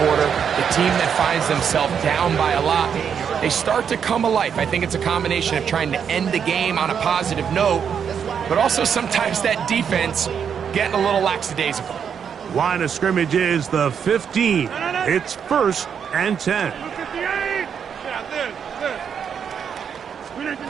the team that finds themselves down by a lot, they start to come alive? I think it's a combination of trying to end the game on a positive note, but also sometimes that defense getting a little lackadaisical. Line of scrimmage is the 15. It's 1st and 10.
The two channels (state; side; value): quieter; left; 7.5 dB